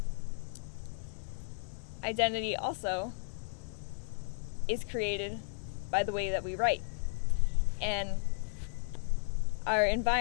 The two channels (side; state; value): right; silent; digital silence